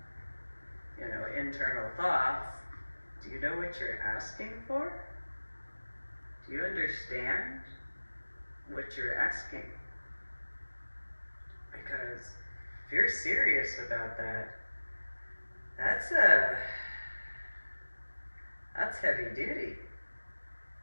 internal thoughts. Do you know what you're asking for? Do you understand what you're asking? Because if you're serious about that, that's heavy duty.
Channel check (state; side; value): inverted; both; correlation -1.00